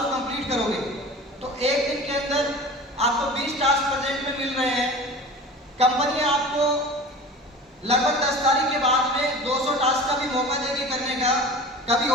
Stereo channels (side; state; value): both; normal; correlation 0.37